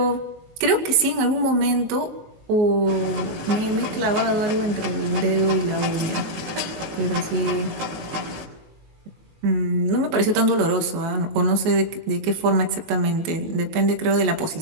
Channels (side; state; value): left; late; 19 ms